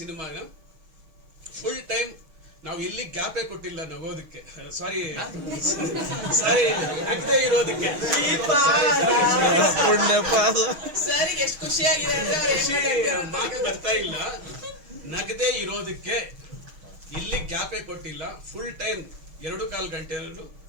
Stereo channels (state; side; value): late; left; 6.3 ms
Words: ಫುಲ್ ಟೈಮ್ ನಾವು ಎಲ್ಲಿ ಗ್ಯಾಪೇ ಕೊಟ್ಟಿಲ್ಲ ನಗೋದಕ್ಕೆ, ಸಾರಿ ನಗದೆ ಇರೋದಕ್ಕೆ. ಮಾತು ಬರ್ತಾ ಇಲ್ಲ, ನಗದೆ ಇರೋದಕ್ಕೆ ಇಲ್ಲಿ ಗ್ಯಾಪೇ ಕೊಟ್ಟಿಲ್ಲ. ಫುಲ್ ಟೈಮ್ 2.25 ಗಂಟೆಯಲ್ಲೂ